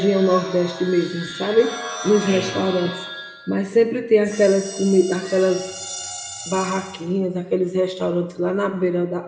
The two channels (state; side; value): identical; both; correlation 1.00